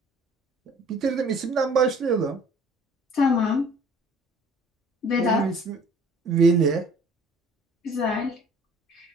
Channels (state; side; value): normal; both; correlation 0.52